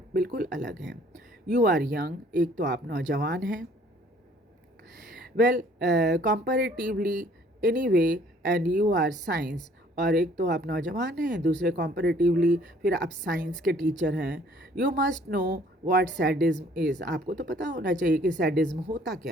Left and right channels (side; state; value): both; normal; correlation 0.58